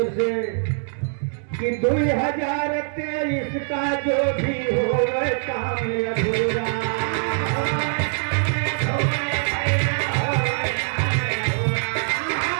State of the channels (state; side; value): silent; left; 56 dB below the other